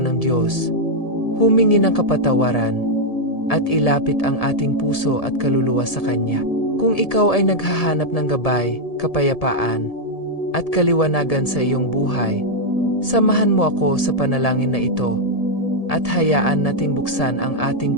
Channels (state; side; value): late; right; 1.7 ms